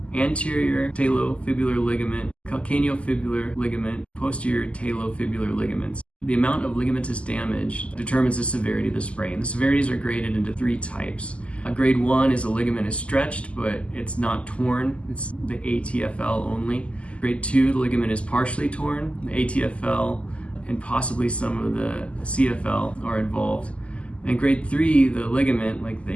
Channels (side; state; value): right; late; 0.059 ms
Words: anterior talofibular ligament, calcaneofibular ligament, posterior talofibular ligaments. The amount of ligamentous damage determines the severity of the sprain. The severities are graded into three types. Grade 1 is a ligament is stretched, but it's not torn. It's the ATFL only. Grade 2, the ligament is partially torn. The ATFL and possibly some of the CFL are involved. And grade 3, the ligament, like